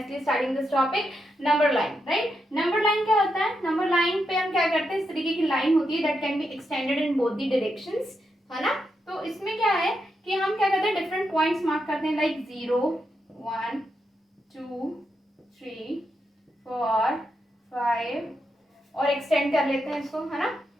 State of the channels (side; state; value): both; normal; correlation 0.84